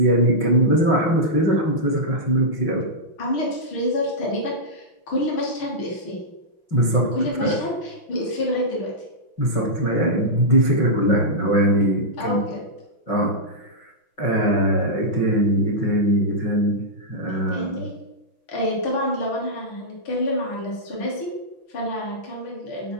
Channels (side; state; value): right; late; 6.0 ms